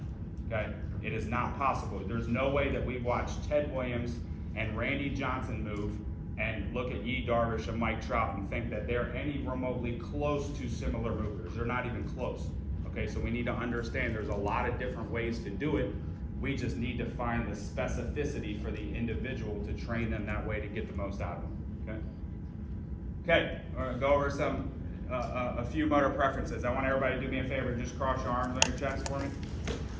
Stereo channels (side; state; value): both; identical; correlation 1.00